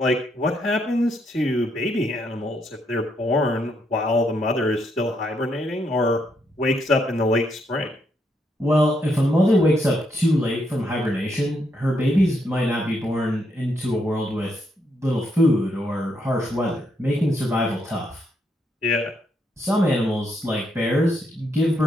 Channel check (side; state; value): both; normal; correlation 0.77